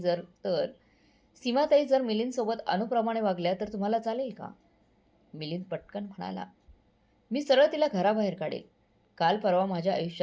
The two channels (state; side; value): identical; both; correlation 1.00